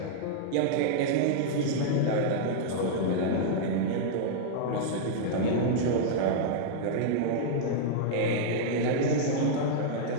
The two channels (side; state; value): both; different; correlation -0.02